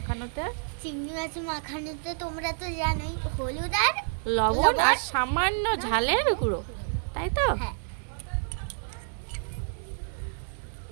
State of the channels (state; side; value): silent; left; digital silence